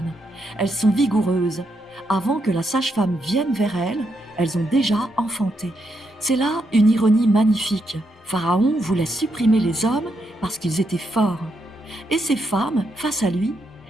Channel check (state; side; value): normal; both; correlation 0.80